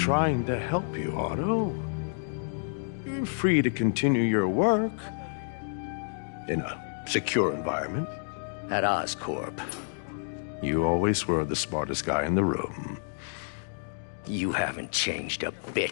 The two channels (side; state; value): right; silent; digital silence